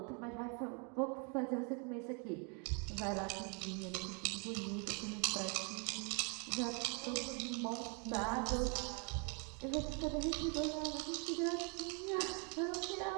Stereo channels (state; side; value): quieter; left; 36.4 dB